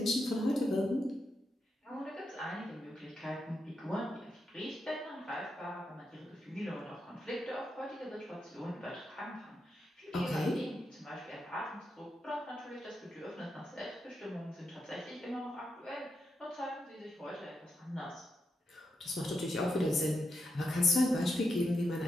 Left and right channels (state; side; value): normal; both; correlation 0.85